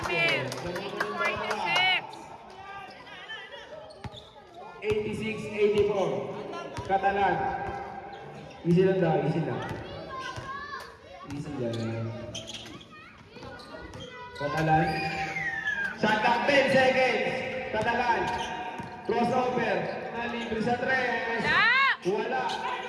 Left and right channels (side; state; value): both; identical; correlation 1.00